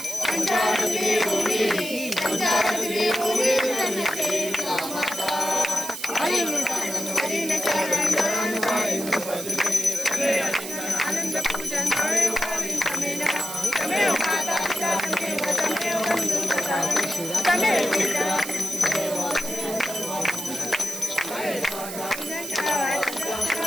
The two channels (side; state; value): right; noise; hiss, 9 dB below the sound